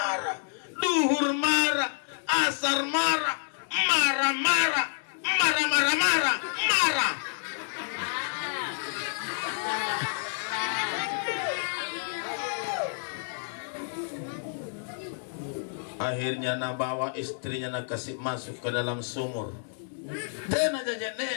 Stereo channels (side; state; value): right; silent; digital silence